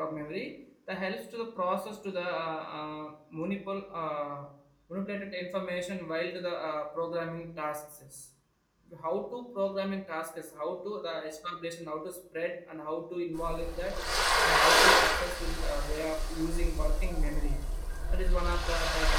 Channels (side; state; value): both; identical; correlation 1.00